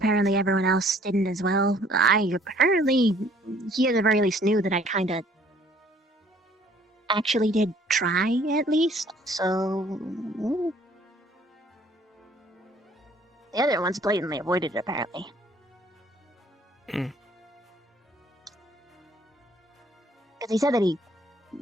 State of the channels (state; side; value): normal; both; correlation 0.59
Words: everyone else didn't as well. He at the very least knew that I kinda actually did try, at least, so... The other ones blatantly avoided it, apparently. Because he said that he